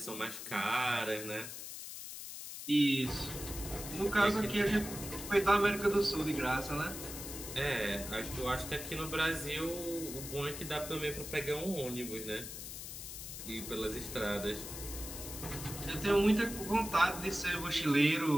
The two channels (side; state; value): left; noise; hiss, 9 dB below the sound